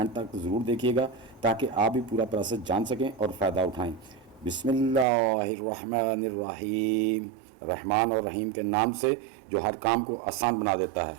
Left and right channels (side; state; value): left; drops out; at 5.1 s